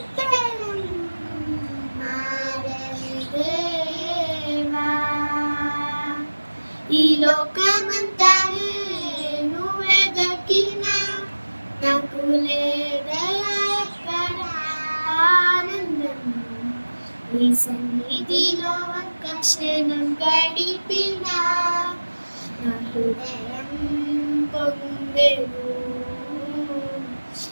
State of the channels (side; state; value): both; inverted; correlation -1.00